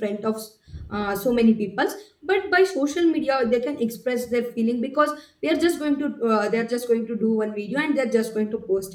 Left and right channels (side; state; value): both; identical; correlation 1.00